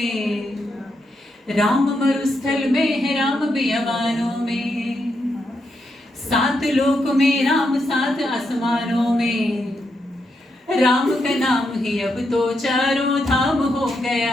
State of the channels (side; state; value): both; normal; correlation 0.82